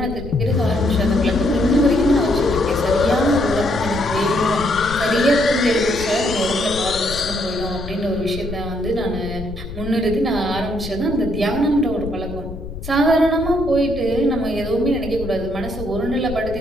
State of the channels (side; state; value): left; noise; rumble, 11 dB below the sound